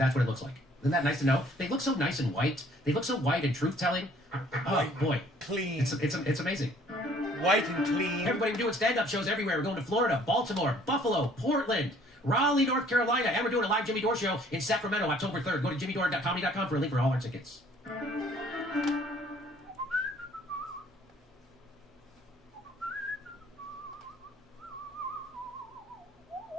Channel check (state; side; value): normal; both; correlation 0.58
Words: what it looks like. Isn't that nice to know? They look so nice and white. They look so white and truth-telling. Oh boy, clean. It's amazing. White and clean. Everybody, we're doing stand-up shows everywhere. We're going to Florida, Baltimore, Buffalo, Portland, Raleigh, North Carolina, and we're doing a live Jimmy Dore show in Sacramento, October 3rd. Go to jimmydore.comedy.com for a link for all our tickets.